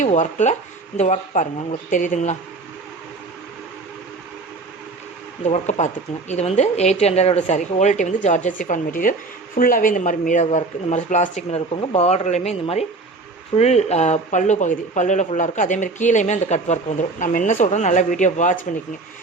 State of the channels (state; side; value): quieter; left; 3.5 dB